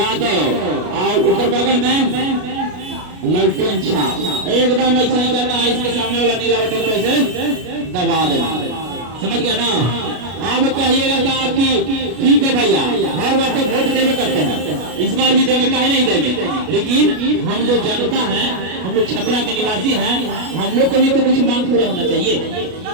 और ऊपर बगल में लालटेन छाप। एकदम ऐसा ही करना है। इसके सामने वाला नीला बटन को ऐसे दबा देना। समझ गया ना? अब कहिएगा कि आपकी ठीक है भैया, हर बार तो वोट देवे करते हैं, इस बार भी देंगे, काहे नहीं देंगे। लेकिन हम जो जनता है, हम लोग छपरा के निवासी हैं, हम लोग को भी तो कुछ मांग पूरा होना चाहिए,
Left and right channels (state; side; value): late; left; 33 ms